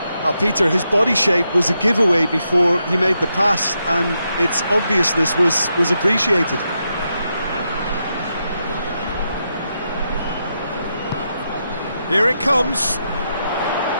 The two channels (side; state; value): both; inverted; correlation -0.84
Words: Peter, his body shape was a giveaway before he made the pass, and its obviousness was appreciated. Here it comes.